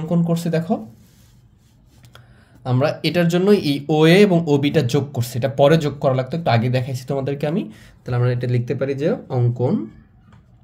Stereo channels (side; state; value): both; identical; correlation 1.00